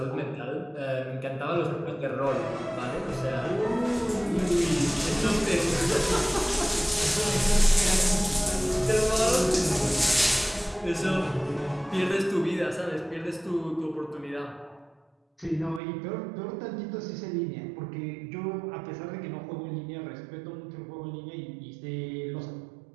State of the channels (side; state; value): left; drops out; at 15.8 s